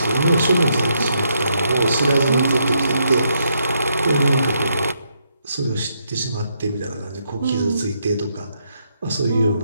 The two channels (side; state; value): both; inverted; correlation -0.77